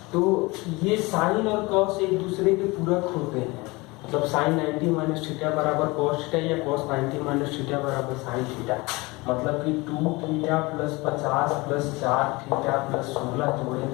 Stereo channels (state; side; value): quieter; right; 23.9 dB